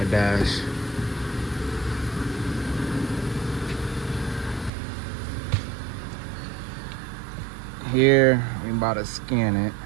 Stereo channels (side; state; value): left; drops out; at 4.7 s